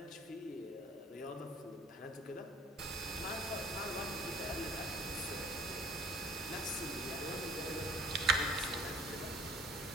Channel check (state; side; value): normal; both; correlation 0.53